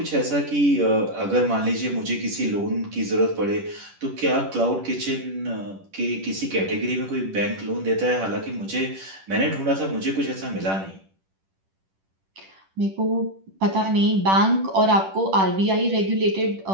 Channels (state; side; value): late; left; 10 ms